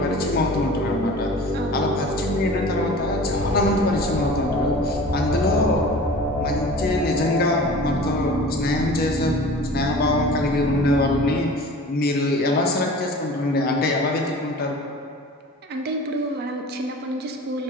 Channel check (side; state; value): both; normal; correlation 0.41